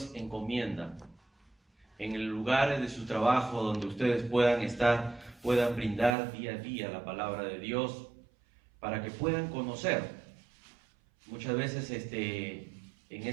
encomienda en el lugar de su trabajo donde ustedes puedan estar, puedan brindar día a día la palabra de Dios para que puedan conocer. Muchas veces en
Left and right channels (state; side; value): drops out; left; at 6.2 s